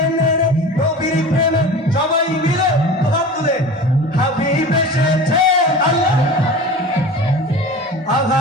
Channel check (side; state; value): both; normal; correlation 0.36